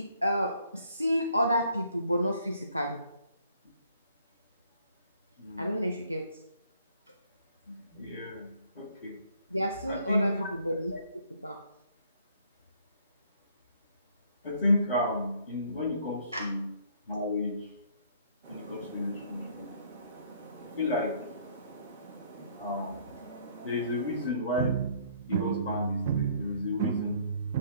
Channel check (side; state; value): both; inverted; correlation -0.62